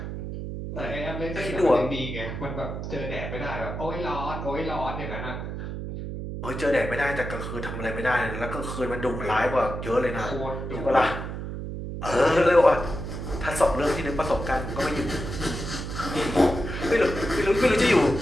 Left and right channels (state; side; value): noise; right; hum, 6 dB below the sound